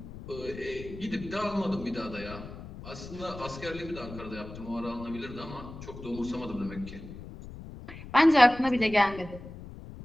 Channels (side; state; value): left; noise; rumble, 13 dB below the sound